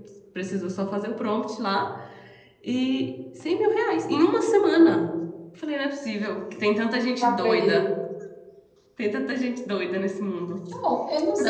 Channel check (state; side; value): identical; both; correlation 1.00